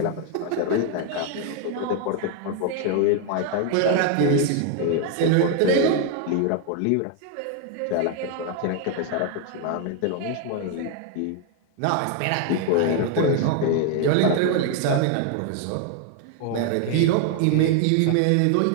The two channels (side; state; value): both; different; correlation 0.01